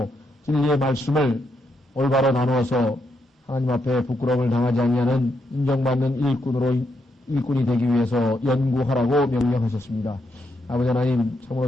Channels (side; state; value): both; normal; correlation 0.80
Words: 진리의 말씀을 올바로 나누어서 하나님 앞에 부끄러움을 당하지 아니하는 인정받는 일꾼이 되기 위해서 연구하라고 명령하셨습니다. 아버지 하나님, 참으로